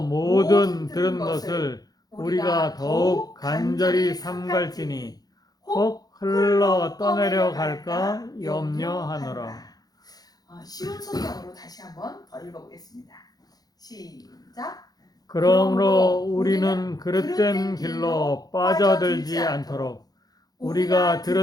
모든 들은 것을 우리가 더욱 간절히 삼갈지니 혹 흘러 떠내려 갈까 염려하노라. 쉬운 성경으로 다시 한번 더 읽어보겠습니다. 시작. 그러므로 우리는 그릇된 길로 빠져들지 않도록 우리가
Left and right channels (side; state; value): right; late; 0.19 ms